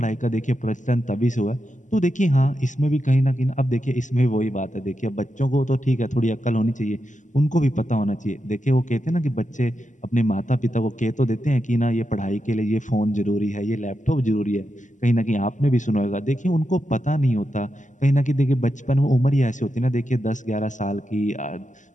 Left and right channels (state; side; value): late; right; 0.36 ms